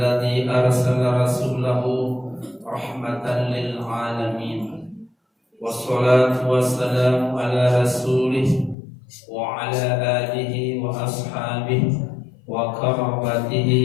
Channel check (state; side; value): drops out; right; at 8.8 s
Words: arsala rasulahu rahmatan lil alamin. Wassalatu wassalamu ala rasulih wa ala alihi wa ashabihi wa